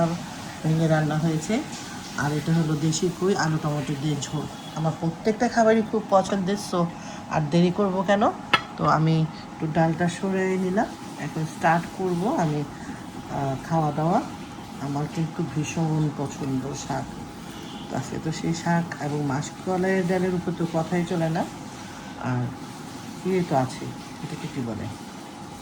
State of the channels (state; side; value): identical; both; correlation 1.00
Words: ভেঙে রান্না হয়েছে, আর এটা হলো দেশি কই আলু টমেটো দিয়ে ঝোল। আমার প্রত্যেকটা খাবারই খুব পছন্দের, সো আর দেরি করব কেন। তো আমি একটু ডালটা সরিয়ে নিলাম, এখন স্টার্ট করব আমি খাওয়া দাওয়া। আমার কিন্তু ভীষণ পছন্দ শাক, আজকে তো সেই শাক এবং মাসকলাইয়ের ডালের উপর তো কথাই চলে না। আর ইয়ে তো আছে, এটাকে কী বলে,